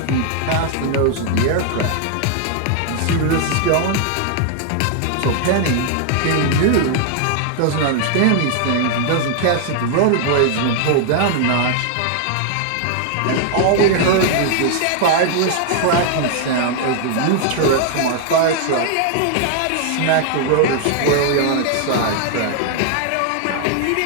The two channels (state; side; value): different; both; correlation 0.00